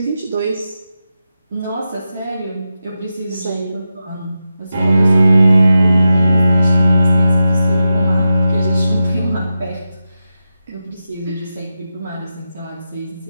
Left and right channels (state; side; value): inverted; both; correlation -0.90